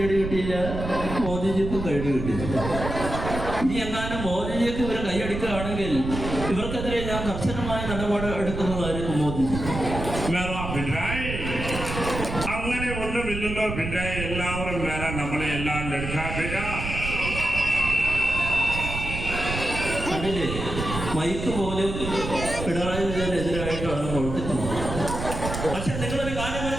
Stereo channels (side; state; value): right; noise; rumble, 6 dB below the sound